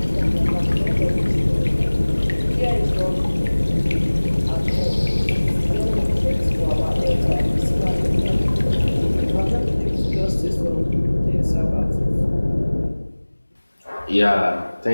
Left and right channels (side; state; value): both; inverted; correlation -1.00